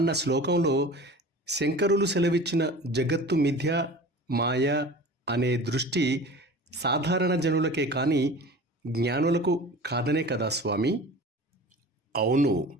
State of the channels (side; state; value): both; normal; correlation 0.39